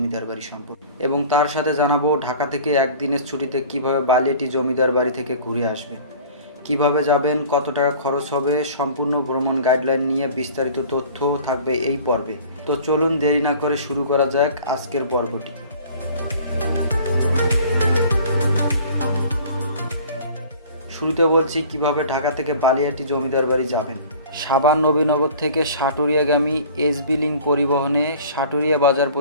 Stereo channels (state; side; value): inverted; both; correlation -0.46